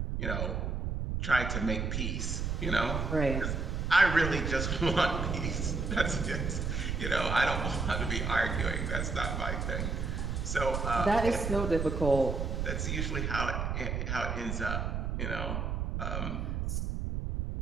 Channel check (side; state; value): right; noise; rumble, 1 dB below the sound